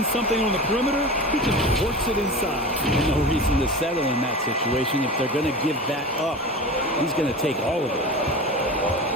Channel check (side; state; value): both; normal; correlation 0.31